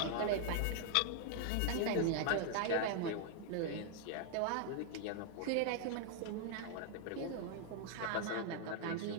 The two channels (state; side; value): different; both; correlation 0.00